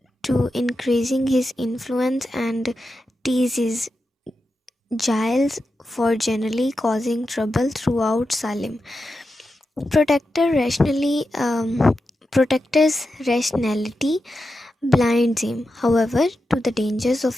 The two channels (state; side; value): normal; both; correlation 0.89